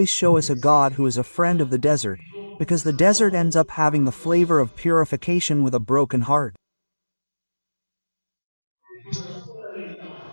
show us a God who is a friend of the desert, because the desert ends up having the flavor of purification with a broken heart.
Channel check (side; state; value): both; inverted; correlation -1.00